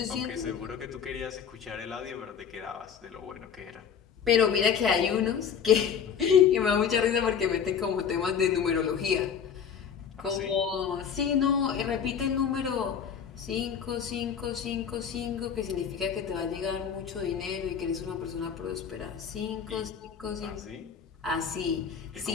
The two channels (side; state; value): right; quieter; 7.5 dB